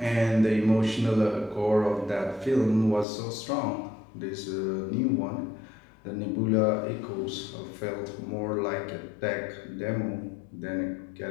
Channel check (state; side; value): drops out; right; at 3.1 s